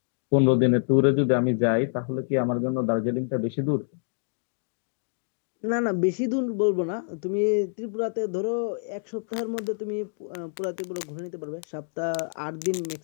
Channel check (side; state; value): right; silent; digital silence